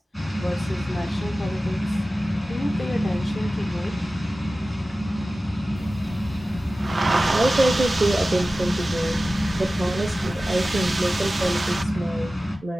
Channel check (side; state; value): both; normal; correlation 0.96